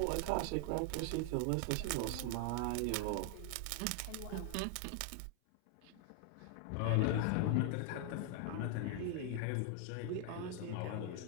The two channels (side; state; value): both; different; correlation 0.00